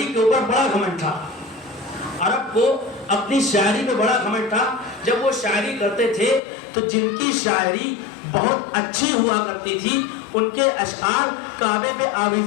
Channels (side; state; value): right; drops out; at 6.4 s